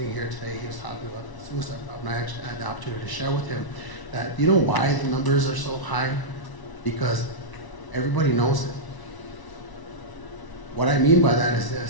here today, he was talking about the suicide problem. I actually had the opportunity to share with him that, why the numbers are so high? Because everybody knows it. What I mean by that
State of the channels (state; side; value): late; right; 1.0 ms